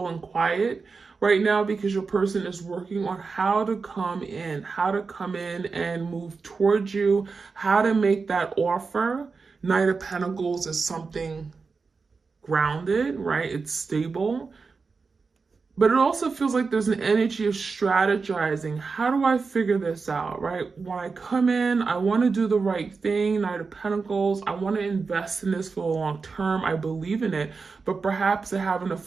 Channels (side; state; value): left; quieter; 4.6 dB